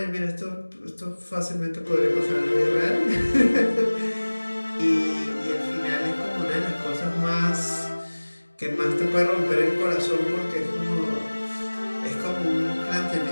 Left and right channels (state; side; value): inverted; both; correlation -1.00